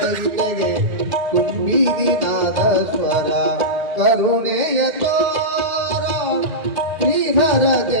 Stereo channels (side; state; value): left; late; 1.8 ms